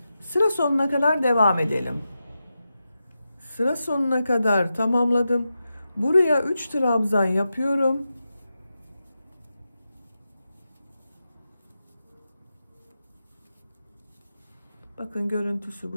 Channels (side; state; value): both; inverted; correlation -0.90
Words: Sıra sonuna kadar devam edelim. Sıra sonuna kadar tamamladım. Buraya 3 trabzan yapıyorum. Bakın görüntüsü